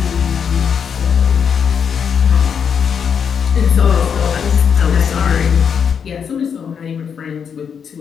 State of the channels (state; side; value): quieter; right; 7.1 dB